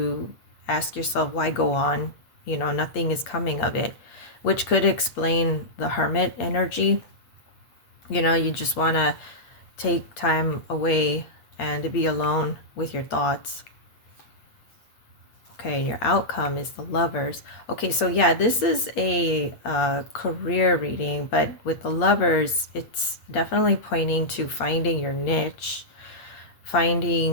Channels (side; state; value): right; late; 8.5 ms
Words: ask yourself, why go on? Nothing is coming of it, which could explain the hermit energy. You just want to take time away and to be alone with your thoughts. Okay, your outcome is the Lovers. Okay, so yeah, this is a career reading, but with the Lovers, it's definitely pointing to finding your niche,